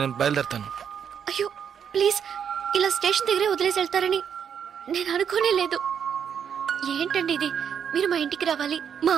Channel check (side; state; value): left; quieter; 7.9 dB